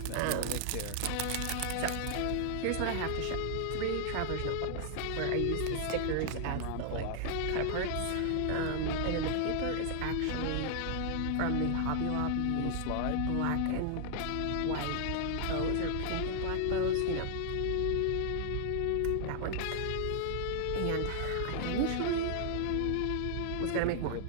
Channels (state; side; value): different; both; correlation -0.01